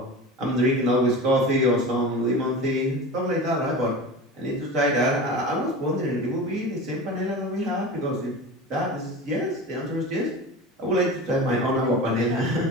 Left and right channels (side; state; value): both; normal; correlation 0.31